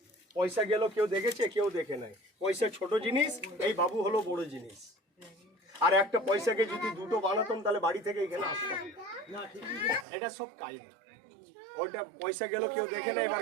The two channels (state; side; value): drops out; left; at 10.1 s